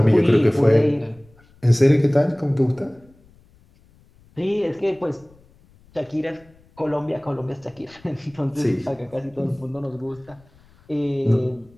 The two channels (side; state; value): left; noise; rumble, 29 dB below the sound